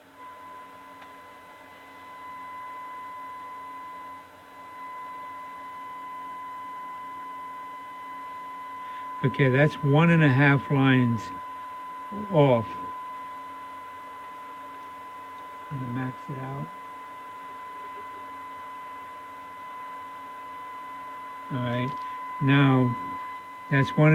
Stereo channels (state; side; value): identical; both; correlation 1.00